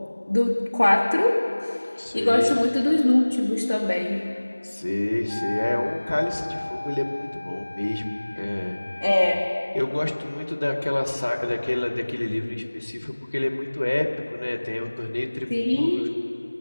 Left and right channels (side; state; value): both; inverted; correlation -1.00